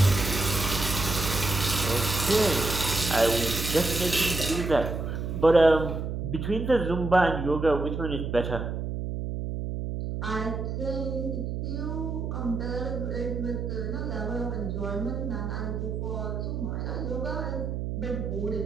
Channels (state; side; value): noise; right; hum, 3 dB below the sound